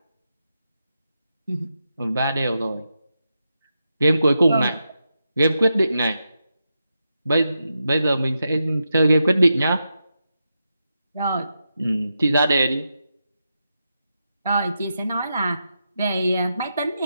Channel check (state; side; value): inverted; both; correlation -0.87